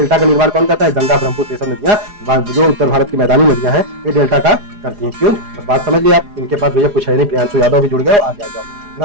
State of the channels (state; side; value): late; left; 4.9 ms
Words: का निर्माण कौन करता है? गंगा, ब्रह्मपुत्र, ये सब नदियां जो उत्तर भारत की मैदानी नदियां हैं, ये डेल्टा का करती हैं। क्यों? बस बात समझ लिये आप। इनके पास भैया कुछ है नहीं। प्रियांशु यादव भी जुड़ गए, आगे आ जाओ।